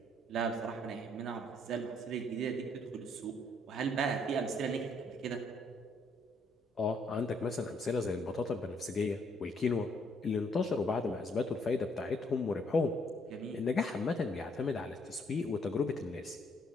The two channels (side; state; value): both; normal; correlation 0.68